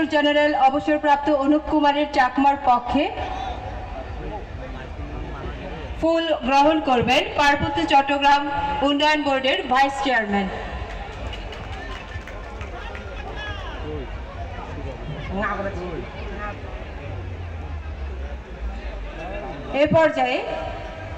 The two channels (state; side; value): identical; both; correlation 1.00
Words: general অবসরপ্রাপ্ত অনুপ কুমারের চাকমার পক্ষে ফুল গ্রহণ করবেন পার্বত্য চট্টগ্রাম উন্নয়ন বোর্ডের ভাইস চেয়ারম্যান। এ পর্যায়ে